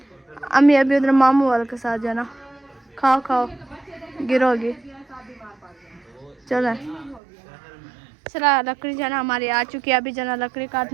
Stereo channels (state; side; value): drops out; left; at 7.2 s